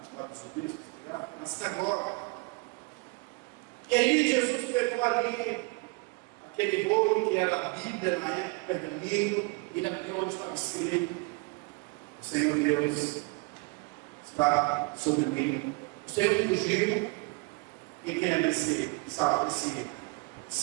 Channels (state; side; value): quieter; left; 28.3 dB